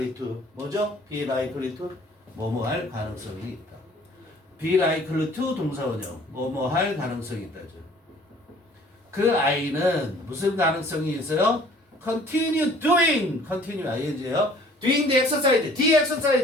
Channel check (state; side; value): normal; both; correlation 0.53